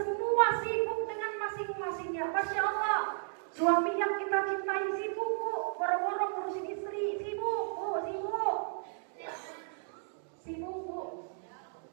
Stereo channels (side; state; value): left; silent; digital silence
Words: sibuk dengan masing-masingnya. Masya Allah. Suami yang kita cintai sibuk, Bu. Boro-boro ngurusin istri. Sibuk, Bu. Sibuk. Sibuk, Bu.